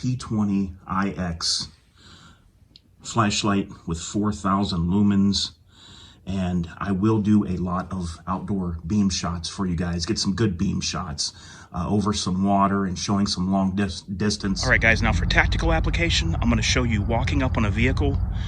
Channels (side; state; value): both; identical; correlation 1.00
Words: flashlight with 4,000 lumens, and I will do a lot of outdoor beam shots for you guys. Get some good beam shots over some water and showing some long distance. All right guys, now for tactical application, I'm going to show you walking up on a vehicle